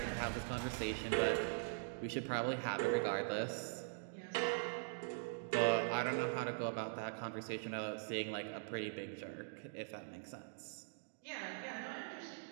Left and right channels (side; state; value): left; silent; digital silence